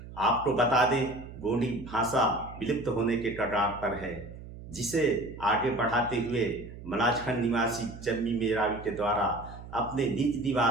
आपको बता दें, गोंडी भाषा विलुप्त होने के कगार पर है, जिसे आगे बढ़ाते हुए मलाजखंड निवासी चम्मी मेरावी के द्वारा अपने निज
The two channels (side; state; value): right; noise; hum, 14 dB below the sound